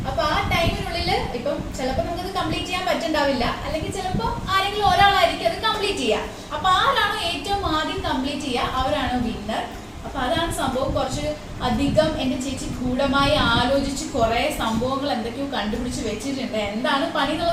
അപ്പോൾ ആ ടൈമിനുള്ളിൽ ഇപ്പം ചിലപ്പോൾ നമുക്കത് കംപ്ലീറ്റ് ചെയ്യാൻ പറ്റുന്നുണ്ടാവില്ല, അല്ലെങ്കിൽ ചിലപ്പോൾ ആരെങ്കിലും ഒരാളായിരിക്കും അത് കംപ്ലീറ്റ് ചെയ്യുക. അപ്പോൾ ആരാണോ ഏറ്റവും ആദ്യം കംപ്ലീറ്റ് ചെയ്യുക അവരാണ് വിന്നർ. അപ്പോൾ അതാണ് സംഭവം. കുറച്ച് അധികം എൻ്റെ ചേച്ചി ഗൂഢമായി ആലോചിച്ച് കുറേ സംഭവങ്ങൾ എന്തൊക്കെയോ കണ്ടുപിടിച്ച് വെച്ചിട്ടുണ്ട്. എന്താണ് പണി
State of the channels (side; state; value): both; identical; correlation 1.00